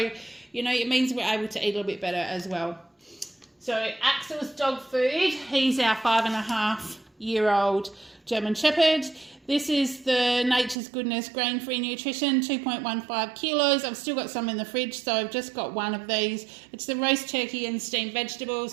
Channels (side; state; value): left; drops out; at 10.8 s